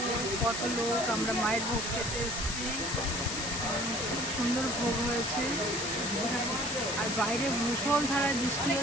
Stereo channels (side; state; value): left; noise; hiss, 4 dB below the sound